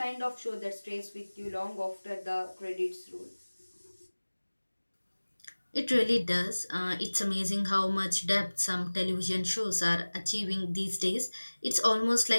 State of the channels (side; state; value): both; inverted; correlation -1.00